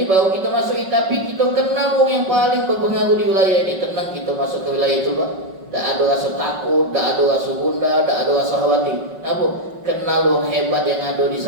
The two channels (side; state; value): left; late; 5.4 ms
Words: baru kita masuk, tapi kita kenal wong yang paling berpengaruh di wilayah ini. Tenang kita masuk ke wilayah itu Pak. Tak ada rasa takut, tak ada rasa gundah, tak ada rasa khawatir. Kenapa? Kenal wong hebat yang ada di